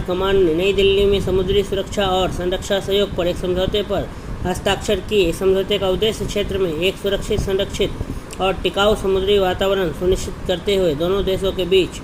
कमांड ने नई दिल्ली में समुद्री सुरक्षा और संरक्षा सहयोग पर एक समझौते पर हस्ताक्षर किए। इस समझौते का उद्देश्य क्षेत्र में एक सुरक्षित, संरक्षित और टिकाऊ समुद्री वातावरण सुनिश्चित करते हुए दोनों देशों के बीच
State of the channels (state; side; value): identical; both; correlation 1.00